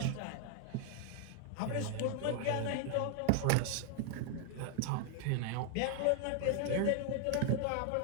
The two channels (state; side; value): different; both; correlation 0.00